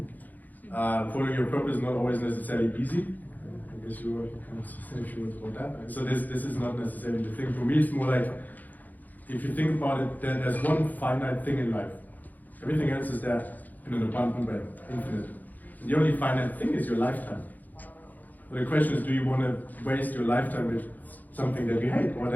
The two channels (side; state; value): right; late; 0.082 ms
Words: Following your purpose is not always necessarily easy. I guess you can say a few words about that. So this is not necessarily the thing. For me, it's more like, if you think about it, there's one finite thing in life. Everything else is there in an abundant way, infinite. And the only finite thing is your lifetime. So the question is, do you want to waste your lifetime with something that you hate, or